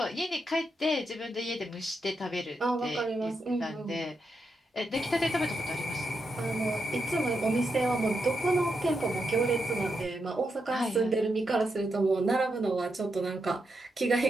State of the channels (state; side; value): normal; both; correlation 0.84